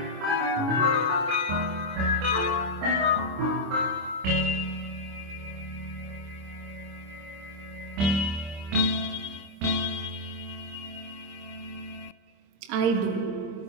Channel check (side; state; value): left; late; 26 ms